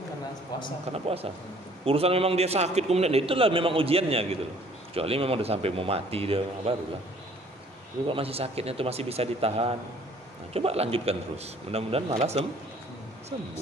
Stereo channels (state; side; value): normal; both; correlation 0.57